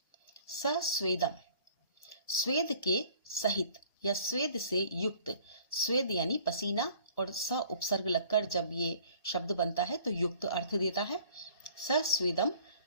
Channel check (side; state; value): both; inverted; correlation -0.53